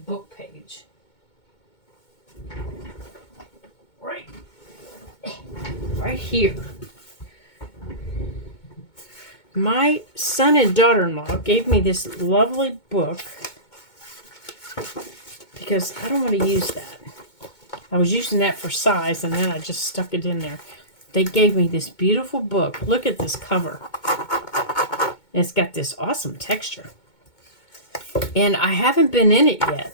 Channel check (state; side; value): late; right; 2.2 ms